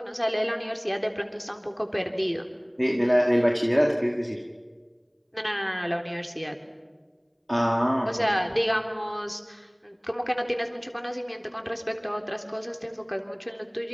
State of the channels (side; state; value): both; identical; correlation 1.00